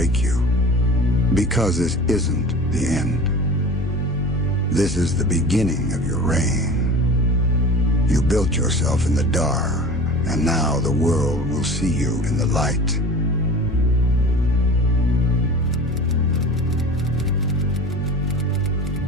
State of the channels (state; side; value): noise; left; hum, 10 dB below the sound